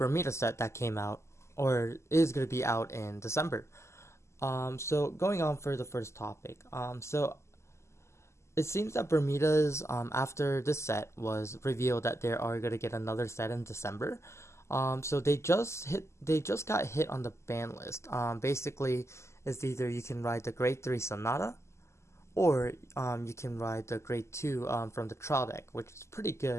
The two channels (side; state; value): right; late; 0.13 ms